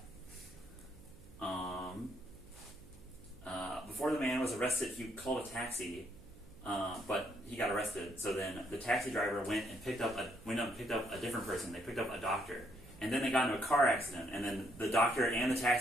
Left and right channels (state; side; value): noise; right; hum, 21 dB below the sound